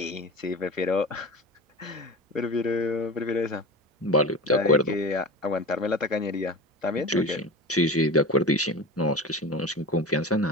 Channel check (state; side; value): normal; both; correlation 0.30